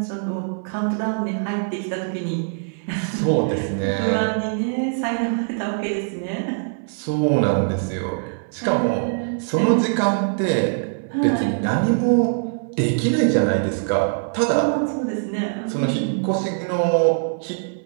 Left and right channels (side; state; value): left; silent; 64 dB below the other